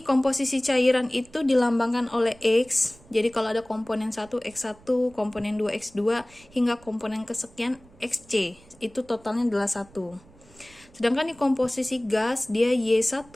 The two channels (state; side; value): noise; right; rumble, 26 dB below the sound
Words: komposisi cairan itu dilambangkan oleh X. Jadi kalau ada komponen 1 X1, komponen 2 X2 hingga komponen kesekian XC, itu totalnya adalah 1. Sedangkan di komposisi gas dia Y1